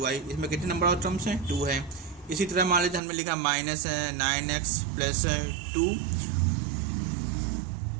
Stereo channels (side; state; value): left; drops out; at 3.0 s